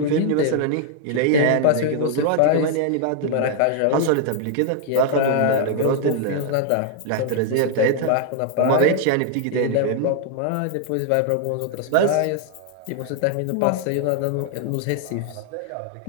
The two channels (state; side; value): different; both; correlation 0.00